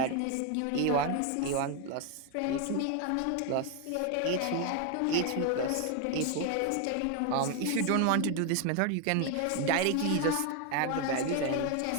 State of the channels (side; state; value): both; different; correlation 0.01